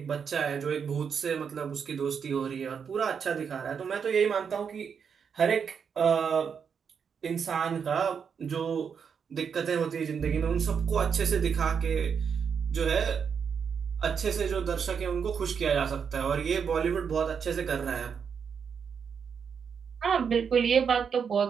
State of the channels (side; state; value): left; quieter; 6.7 dB